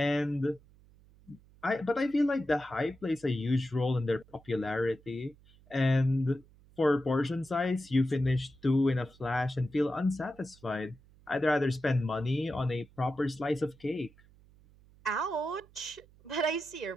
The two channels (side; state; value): right; noise; hum, 27 dB below the sound